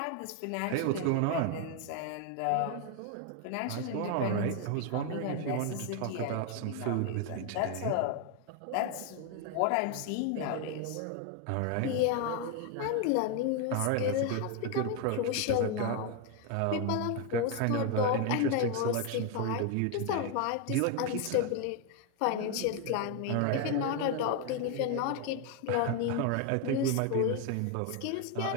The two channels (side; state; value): both; different; correlation 0.01